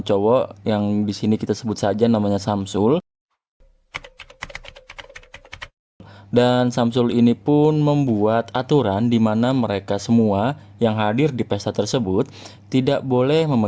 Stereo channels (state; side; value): identical; both; correlation 1.00